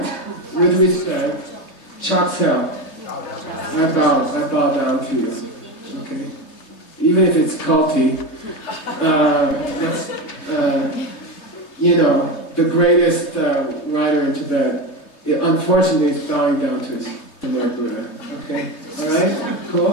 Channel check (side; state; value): right; late; 3.2 ms